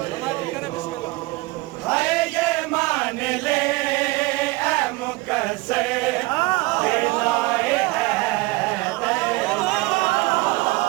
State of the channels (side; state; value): left; quieter; 22.7 dB